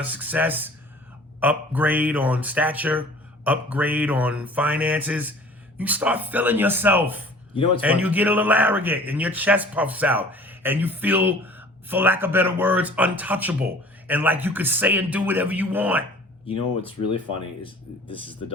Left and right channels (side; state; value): both; normal; correlation 0.48